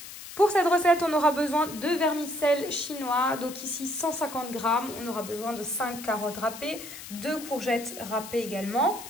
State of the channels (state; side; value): noise; left; hiss, 13 dB below the sound